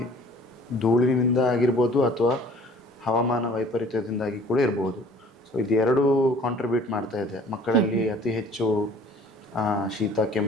ಧೂಳಿನಿಂದ ಆಗಿರ್ಬೋದು ಅಥವಾ ಹವಾಮಾನ ವೈಪರೀತ್ಯದಿಂದಾಗಿ ಕೂಡ ಇರ್ಬೋದು. ಸೊ ಇದು ಎರಡೂ ಕಾಂಟ್ರಿಬ್ಯೂಟ್ ಮಾಡ್ತಾ ಇದೆ ಮಕ್ಕಳಲ್ಲಿ ಅತಿ ಹೆಚ್ಚು ಶೀತ,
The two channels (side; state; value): both; normal; correlation 0.51